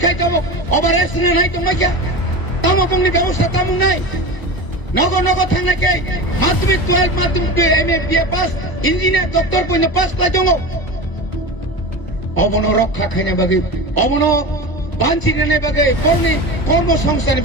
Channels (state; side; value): late; right; 1.0 ms